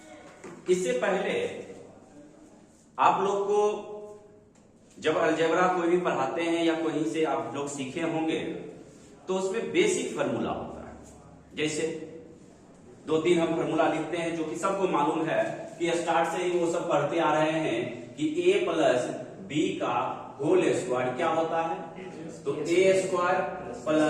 इससे पहले आप लोग को जब अलजेब्रा कोई भी पढ़ाते हैं या कहीं से आप लोग सीखे होंगे तो उसमें बेसिक फार्मूला होता है। जैसे 2-3 हम फार्मूला लिखते हैं जो कि सबको मालूम है कि स्टार्ट से ही वो सब पढ़ते आ रहे हैं कि a प्लस बी का होल स्क्वायर क्या होता है, तो a स्क्वायर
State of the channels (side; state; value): both; identical; correlation 1.00